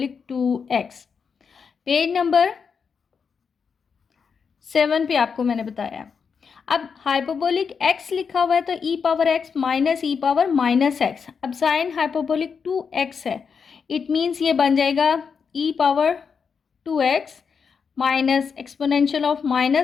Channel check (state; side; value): quieter; right; 6.0 dB